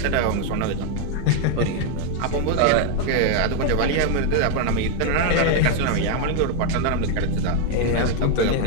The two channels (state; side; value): different; both; correlation 0.01